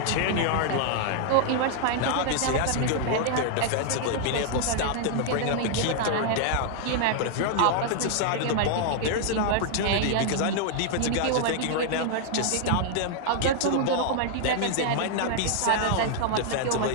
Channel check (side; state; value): both; different; correlation 0.00